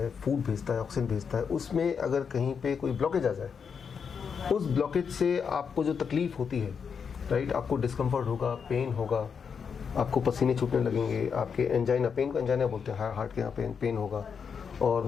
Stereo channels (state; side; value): quieter; right; 6.4 dB